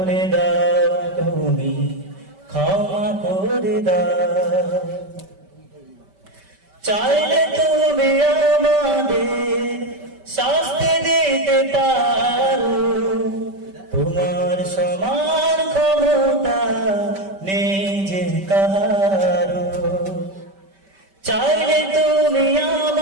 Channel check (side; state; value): left; late; 5.2 ms